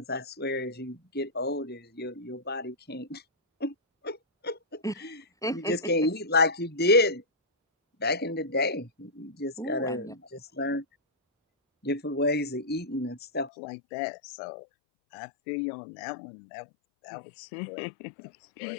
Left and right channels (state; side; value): drops out; right; at 13.5 s